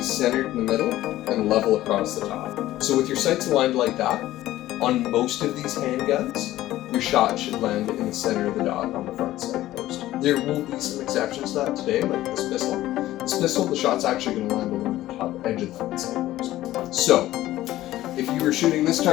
centered in the middle and level across the top. So with your sights aligned like that, on most of these handguns, your shot should land in the center of the dot on the front sight post. There will be some exceptions to that today, like this pistol. This pistol, the shot's actually going to land along the top edge of the front sight post. So, if you were shooting this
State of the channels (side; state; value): right; quieter; 15.1 dB